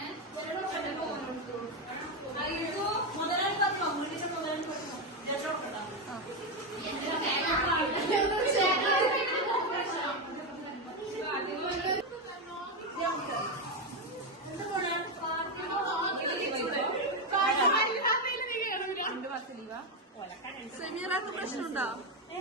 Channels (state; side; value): normal; both; correlation 0.08